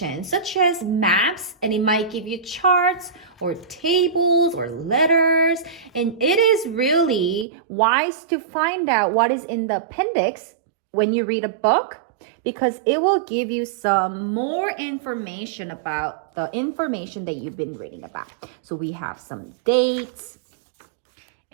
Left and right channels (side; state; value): left; drops out; at 7.5 s